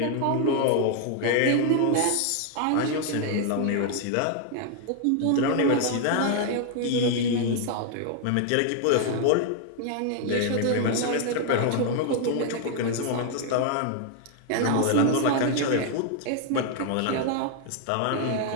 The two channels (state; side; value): different; both; correlation 0.00